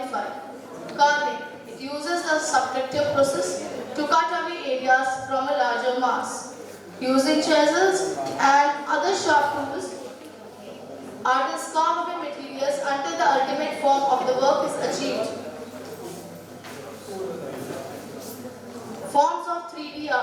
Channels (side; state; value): both; identical; correlation 1.00